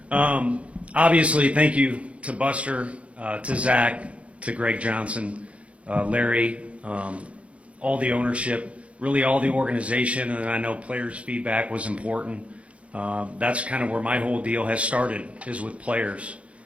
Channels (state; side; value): late; left; 0.063 ms